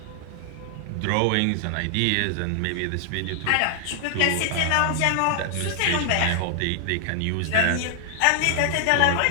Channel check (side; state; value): both; different; correlation 0.00